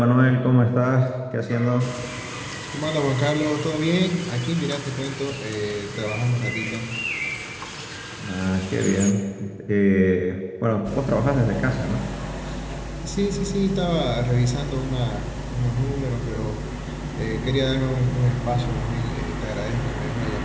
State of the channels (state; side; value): identical; both; correlation 1.00